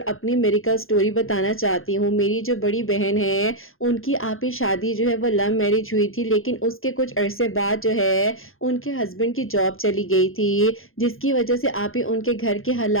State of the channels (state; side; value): late; right; 0.60 ms